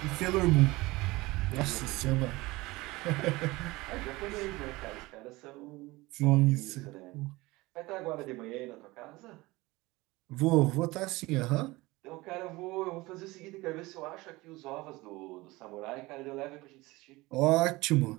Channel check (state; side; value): quieter; left; 21.1 dB